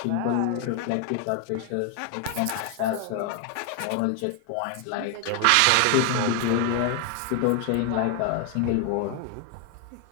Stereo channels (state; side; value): different; both; correlation 0.00